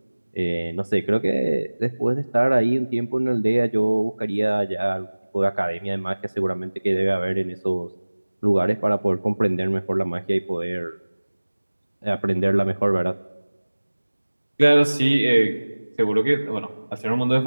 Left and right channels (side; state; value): both; inverted; correlation -1.00